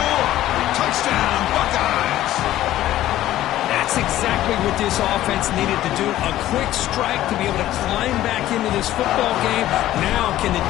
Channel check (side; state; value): right; quieter; 14.0 dB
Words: Touchdown, Buckeyes. That's exactly what this offense needed to do. A quick strike to be able to climb back into this football game. Now can the